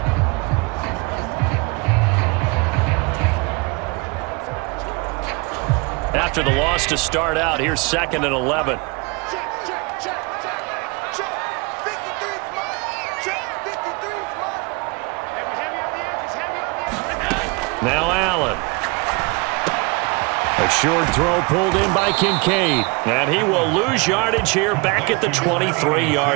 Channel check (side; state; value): left; quieter; 28.8 dB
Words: After the loss to start out, here's 2nd and 11. Now Allen. A short throw pulled in by Kincaid. And he will lose yardage here back at the